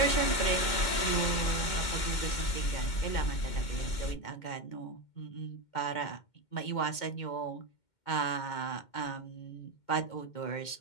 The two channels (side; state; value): right; late; 2.1 ms